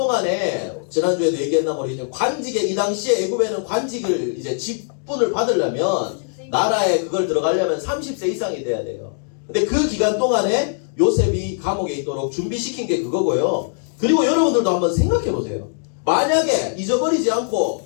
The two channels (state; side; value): silent; right; digital silence